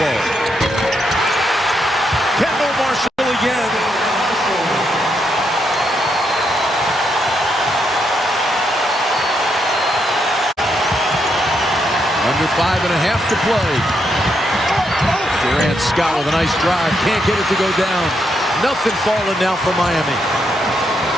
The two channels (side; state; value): both; normal; correlation 0.79